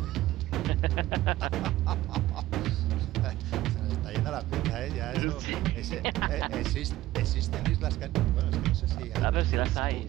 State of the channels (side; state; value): left; quieter; 15.8 dB